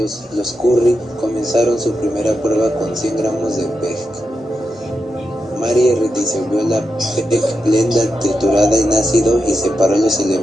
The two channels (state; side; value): normal; both; correlation 0.87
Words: los Curie comenzaron su primera prueba con 100 gramos de PEG. Marie disolvió la PEG blenda triturada en ácido y separó los